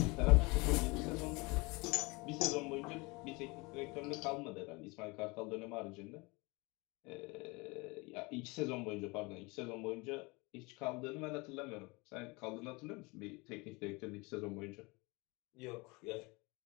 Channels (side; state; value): right; quieter; 26.2 dB